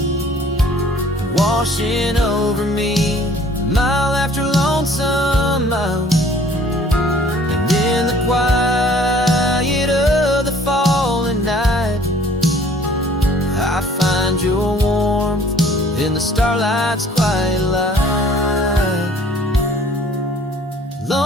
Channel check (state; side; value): normal; both; correlation 0.54